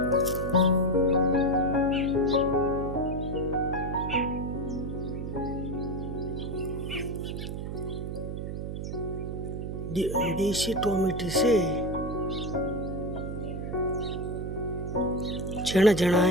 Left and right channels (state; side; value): noise; right; hum, 5 dB below the sound